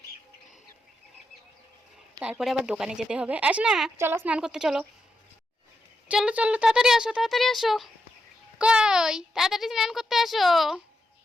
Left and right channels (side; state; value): both; normal; correlation 0.84